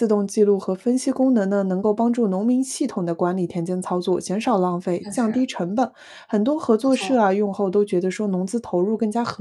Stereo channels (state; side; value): identical; both; correlation 1.00